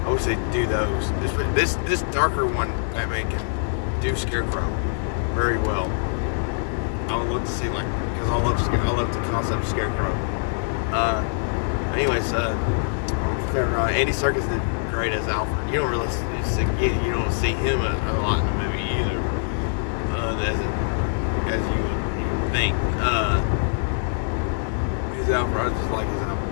I wish they'd do those. This darker one, Batman can do Scarecrow very well. I would love to see because I love the concept of Scarecrow. Anyways, Andy Serkis did great as Alfred. You don't really see him a lot in the movie either, as you would think. His Alfred, I just like his Alfred.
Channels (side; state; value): right; silent; digital silence